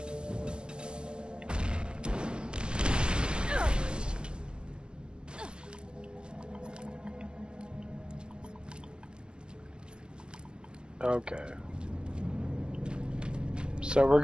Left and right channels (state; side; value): late; left; 0.050 ms